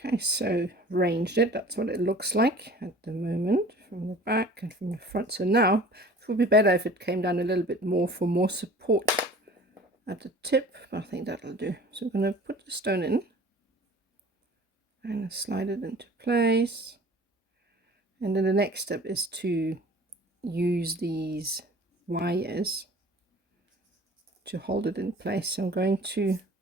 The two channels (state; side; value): normal; both; correlation 0.46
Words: Okay, so ranged it, that's what it looks like at the moment from the back and from the front. So now it would be better if it came down a little bit more for more support at the tip, but I think that'll do. So we're going to put the stone in and slide it into place. And then the next step is to use these wires to hold it in place. So I'm going to